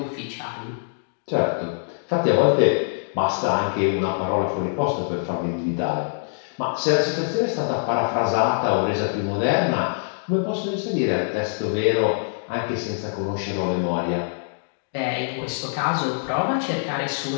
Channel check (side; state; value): right; silent; digital silence